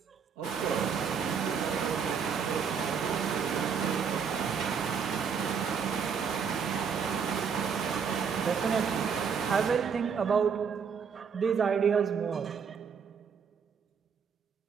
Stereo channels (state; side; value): quieter; left; 6.5 dB